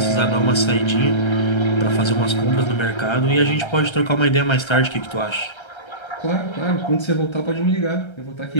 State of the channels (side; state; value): right; late; 1.3 ms